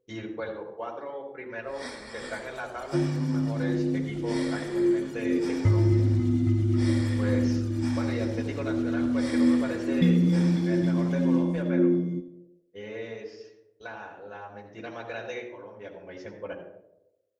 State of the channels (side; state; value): both; identical; correlation 1.00